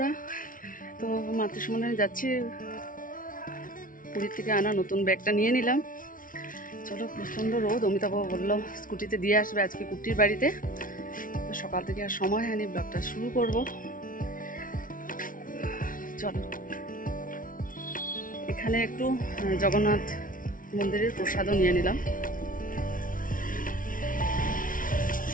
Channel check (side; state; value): right; late; 0.39 ms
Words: তো মাতৃসম্মেলনে যাচ্ছি, পুরীর থেকে আনা নতুন ব্যাগটা নিয়ে নিলাম। চলো, প্রচণ্ড রোদ। অমিতাভ বললো স্কুটিতে দিয়ে আসবে আজকে কুট্টির বাড়িতে। সকাল থেকে আর সময় হয়নি, ব্লগটা শুরু করব। চলো, এখানে একটু জগন্নাথ মন্দিরের প্রসাদও নিয়ে নিলাম।